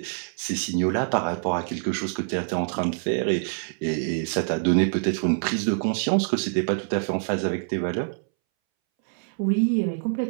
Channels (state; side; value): silent; left; 61 dB below the other